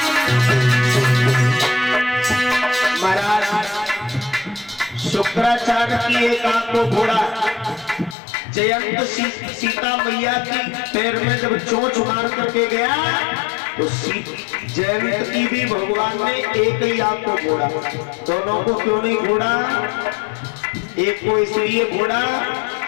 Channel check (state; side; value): drops out; right; at 8.2 s